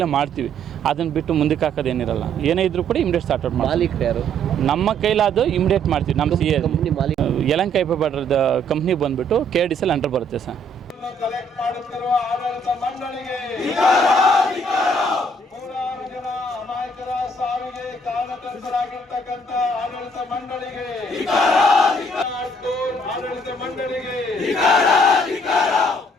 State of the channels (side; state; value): both; normal; correlation 0.64